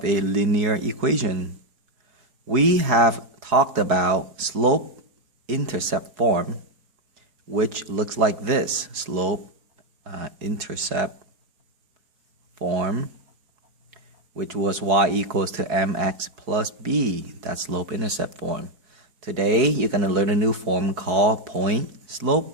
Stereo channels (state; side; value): late; left; 4.7 ms